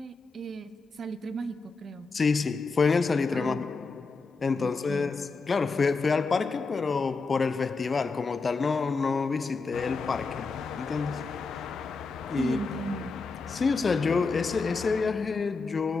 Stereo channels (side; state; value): right; quieter; 4.2 dB